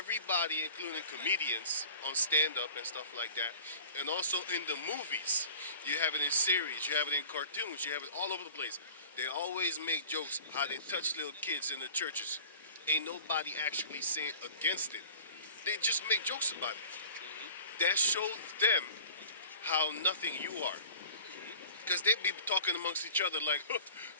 including comedians on stand-up and stuff like that, and also in the movies, you have it in series, you have it in cartoons, you have it all over the place. They always make jokes how they touch little kids in the churches. Ain't nobody actually saying against it. They just make jokes about it. That shows them how nothing you are. Because they be talking amongst each other like,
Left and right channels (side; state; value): both; inverted; correlation -0.44